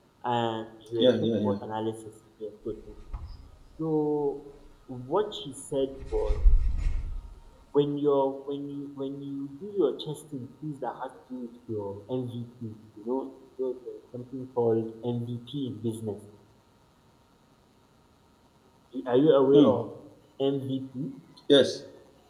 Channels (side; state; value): both; identical; correlation 1.00